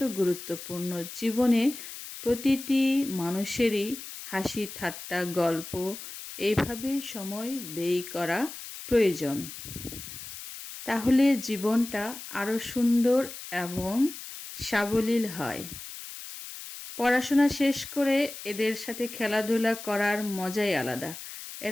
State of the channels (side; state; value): left; noise; hiss, 11 dB below the sound